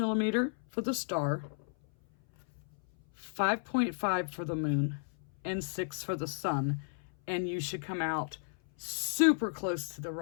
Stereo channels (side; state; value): right; silent; 55 dB below the other